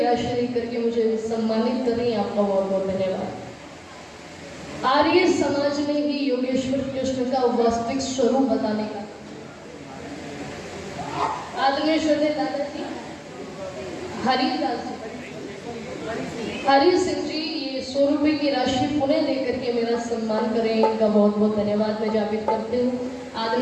देकर के मुझे सम्मानित कर रही है, आपका बहुत बहुत धन्यवाद। आर्य समाज ने ही योगेश्वर कृष्ण का वास्तविक स्वरूप बताने का आदरणीय श्रद्धेय दादाजी हरिदास हरि सिंह जी, ये 100 रुपए की राशि पुनः देकर के मेरा सम्मान करें, इनका बहुत बहुत धन्यवाद मैं ज्ञापित करती हूँ।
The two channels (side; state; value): both; identical; correlation 1.00